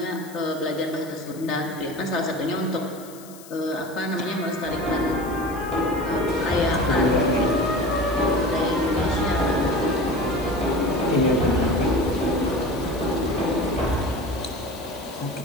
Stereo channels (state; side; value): noise; left; hiss, 20 dB below the sound